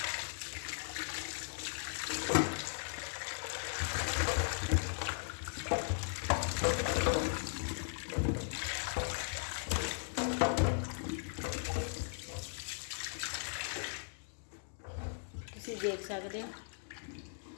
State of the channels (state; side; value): silent; right; digital silence